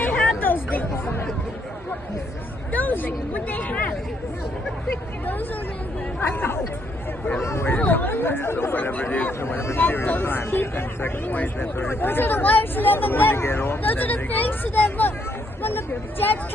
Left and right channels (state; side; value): normal; both; correlation 0.72